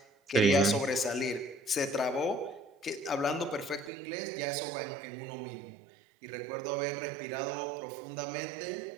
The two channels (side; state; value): left; drops out; at 3.9 s